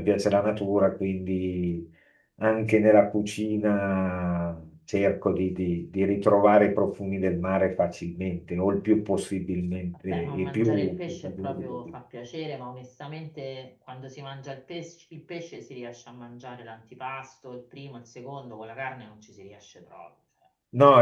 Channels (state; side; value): identical; both; correlation 1.00